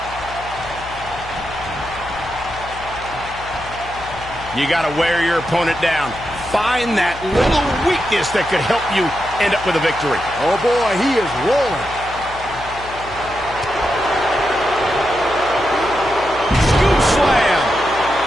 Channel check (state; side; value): noise; left; hum, 15 dB below the sound